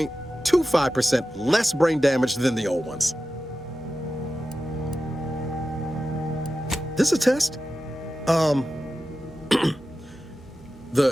less brain damage than the old ones. This a test? The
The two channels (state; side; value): normal; both; correlation 0.93